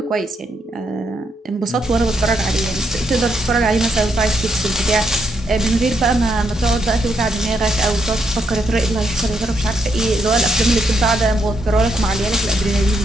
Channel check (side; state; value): both; normal; correlation 0.77